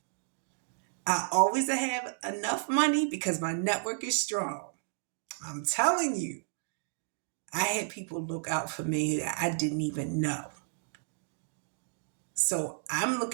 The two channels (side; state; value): left; silent; digital silence